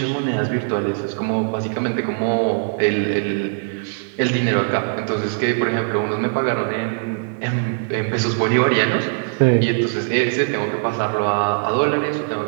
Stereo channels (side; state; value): left; silent; digital silence